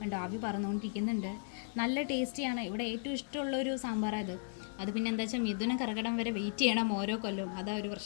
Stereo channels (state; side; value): silent; right; digital silence